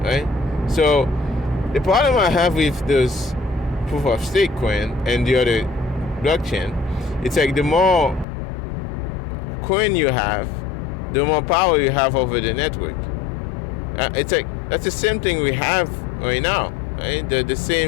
right? So the problem I have with those proof of stake coin and the other blockchain, it's like the more coin you have, the more power you have over the network. It's like that's the same thing we have right now, right? The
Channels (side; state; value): right; drops out; at 8.2 s